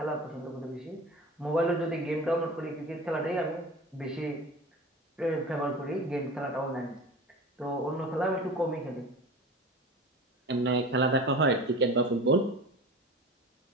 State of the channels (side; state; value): both; normal; correlation 0.35